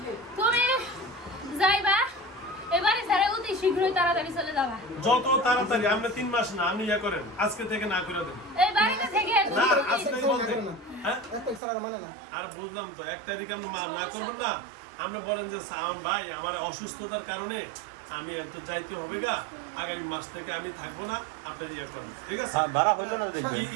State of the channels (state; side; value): drops out; left; at 11.6 s